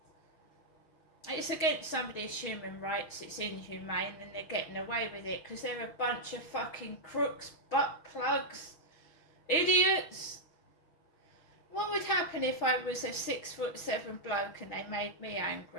It's against somebody's human rights, it's inhumane, and they're getting away with it because they're a bunch of fucking crooks, butt plugs, idiots. What would happen if I was a 6'7" bloke and they made me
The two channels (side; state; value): right; late; 6.4 ms